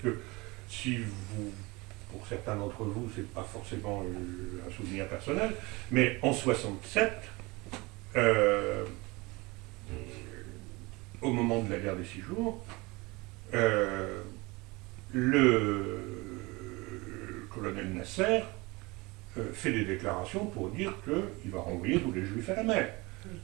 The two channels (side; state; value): left; quieter; 24.1 dB